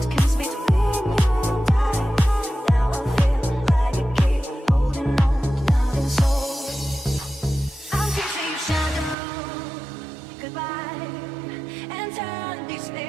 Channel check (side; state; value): left; drops out; at 9.2 s